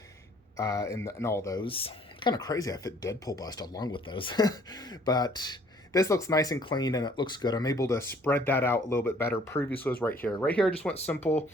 and all those. Kind of crazy I fit Deadpool Bust along with those. But this looks nice and clean, and it looks good. I'm able to spread that out a little bit better. Previously was right here. Right here I just went simple.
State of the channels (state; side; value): normal; both; correlation 0.58